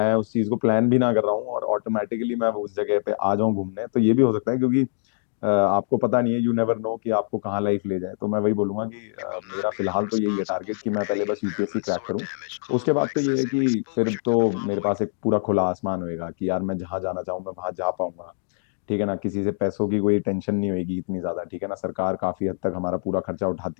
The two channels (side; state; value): right; silent; digital silence